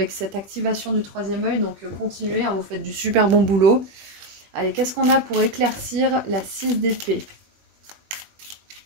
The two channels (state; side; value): late; left; 21 ms